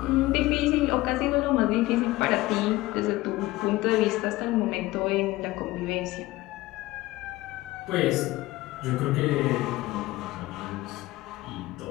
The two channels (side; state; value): right; quieter; 18.4 dB